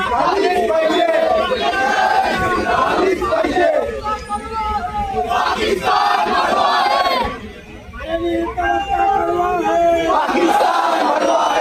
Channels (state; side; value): identical; both; correlation 1.00